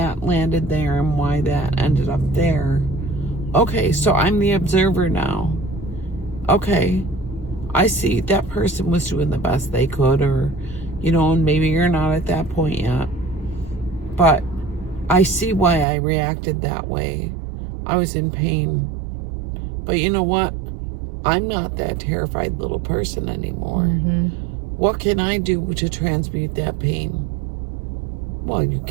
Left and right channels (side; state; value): left; drops out; at 15.9 s